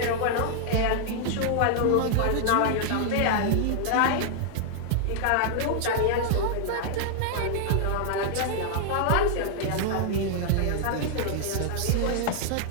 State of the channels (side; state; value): both; different; correlation -0.01